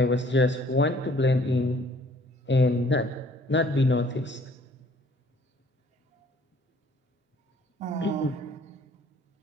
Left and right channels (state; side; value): normal; both; correlation 0.58